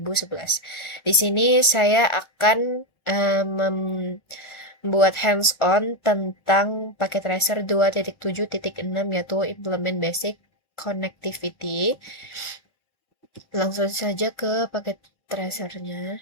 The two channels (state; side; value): late; right; 1.4 ms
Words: Di sini saya akan membuat hands-on tentang paket tracer 2.7.6 yaitu implement basic connectivity. Langsung saja ke paket tracernya.